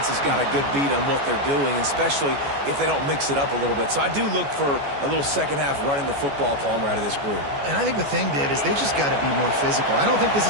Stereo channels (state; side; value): late; left; 14 ms